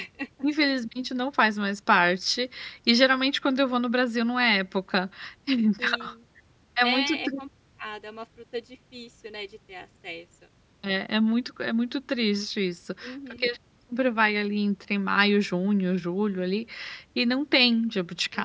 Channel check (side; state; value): both; identical; correlation 1.00